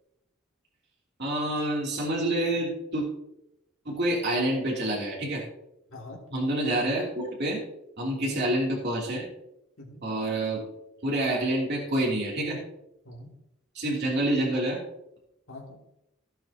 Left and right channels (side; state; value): both; normal; correlation 0.44